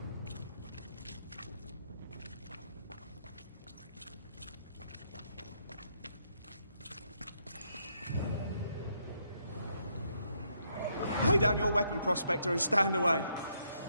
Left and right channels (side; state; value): both; inverted; correlation -0.75